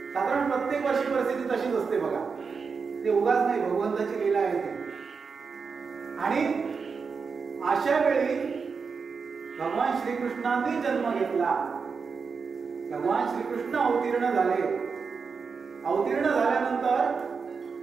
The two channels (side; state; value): left; quieter; 5.3 dB